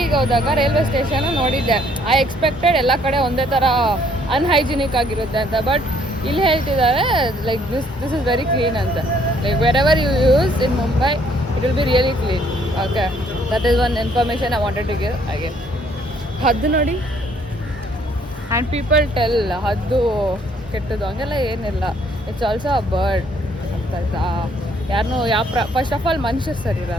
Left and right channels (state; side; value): normal; both; correlation 0.64